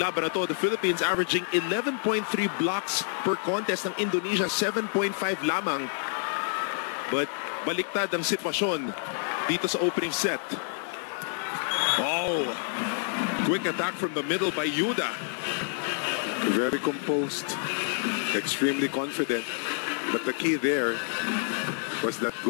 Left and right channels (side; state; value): right; silent; 59 dB below the other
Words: na to. The Philippines averaging 11.3 blocks per contest, ng Indonesia 7.5 lamang. But baliktad ang sitwasyon dito sa opening set. Oh, quick attack from the middle by Yuda. Very composed, extremely confident. But the key there was that